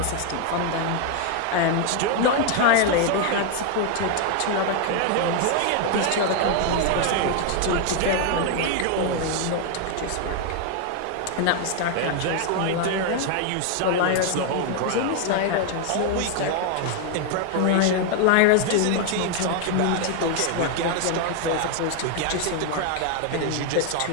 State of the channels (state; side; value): different; both; correlation 0.00